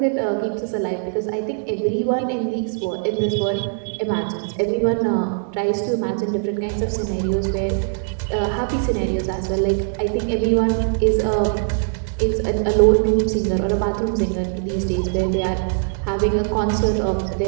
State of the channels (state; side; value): silent; left; digital silence